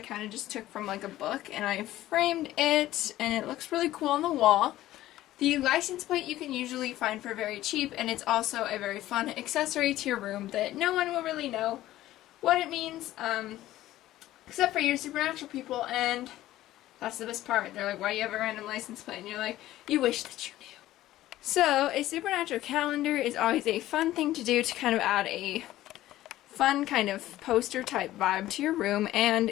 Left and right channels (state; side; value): quieter; right; 14.9 dB